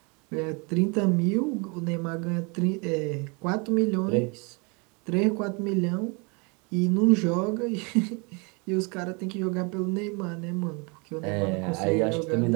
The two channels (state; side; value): quieter; left; 31.5 dB